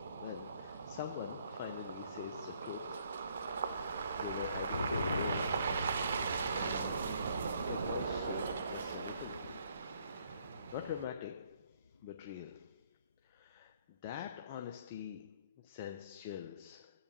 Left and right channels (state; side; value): inverted; both; correlation -0.66